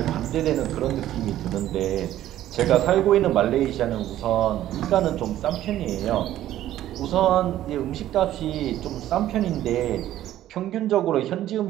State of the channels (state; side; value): quieter; left; 13.0 dB